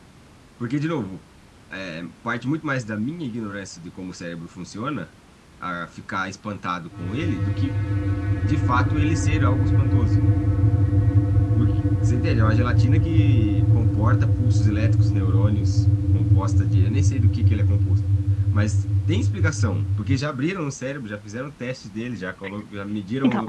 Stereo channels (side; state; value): both; identical; correlation 1.00